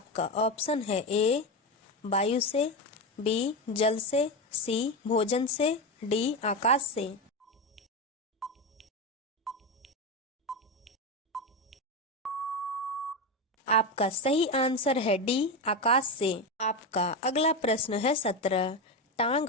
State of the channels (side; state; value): both; normal; correlation 0.15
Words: ऑप्शन है ए वायु से, बी जल से, सी भोजन से, डी आकाश से। आपका सही आंसर है डी आकाश से। आपका अगला प्रश्न है 17। टांग